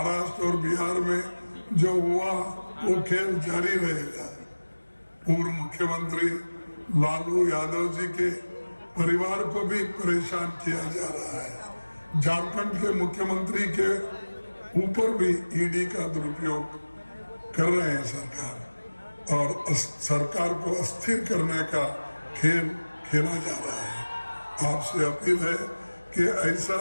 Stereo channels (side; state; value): both; inverted; correlation -1.00